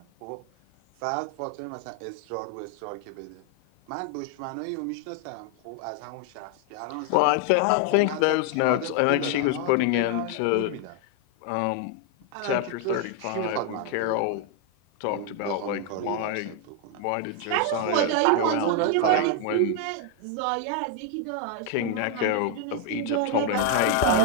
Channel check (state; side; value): different; both; correlation 0.01